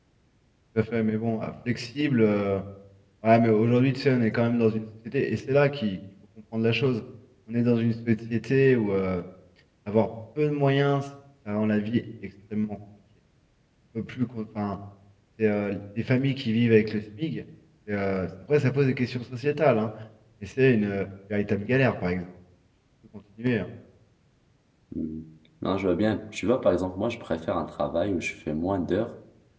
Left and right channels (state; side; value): identical; both; correlation 1.00